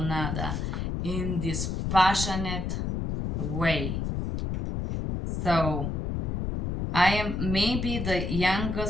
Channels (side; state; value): left; noise; rumble, 2 dB below the sound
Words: in this passionate way. So I am maybe the